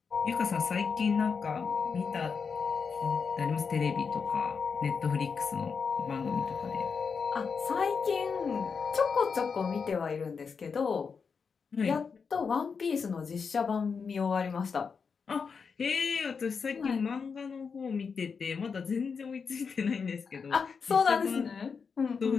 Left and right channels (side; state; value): right; quieter; 5.7 dB